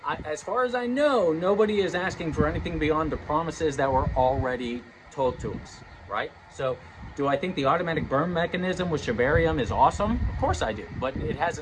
as far as I know, nobody is asking for anything beyond the promises that were already told to us, right? So do I think the automatic burn mechanism with Shibarium is awesome? Of course I do, but it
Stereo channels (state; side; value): identical; both; correlation 1.00